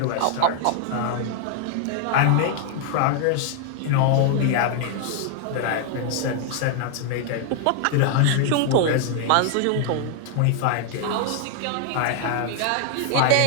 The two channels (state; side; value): different; both; correlation 0.00